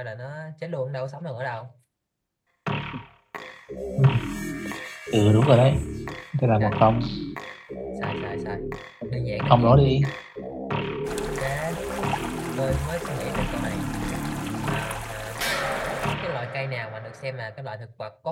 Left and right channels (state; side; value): identical; both; correlation 1.00